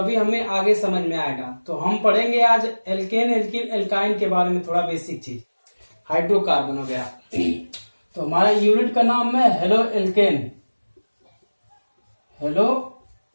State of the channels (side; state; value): both; inverted; correlation -1.00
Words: हमें आगे समझ में आएगा। तो हम पढ़ेंगे आज एल्केन, एल्किन, एल्काइन के बारे में थोड़ा बेसिक चीज, हाइड्रोकार्बन वगैरह। तो हमारा यूनिट का नाम है हेलो एल्केन, हेलो